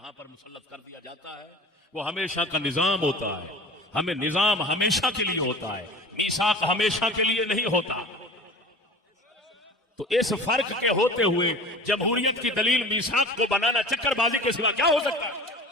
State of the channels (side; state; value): both; normal; correlation 0.38